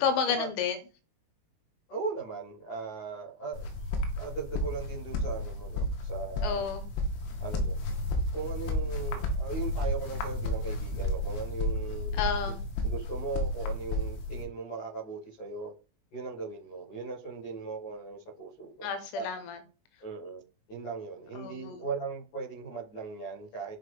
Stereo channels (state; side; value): late; right; 19 ms